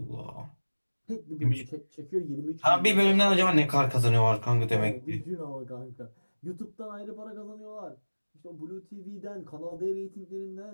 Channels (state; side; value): inverted; both; correlation -1.00